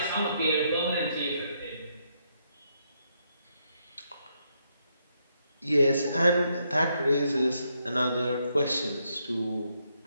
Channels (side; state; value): both; inverted; correlation -0.77